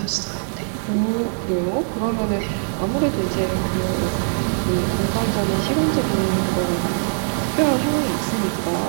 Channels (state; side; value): silent; left; digital silence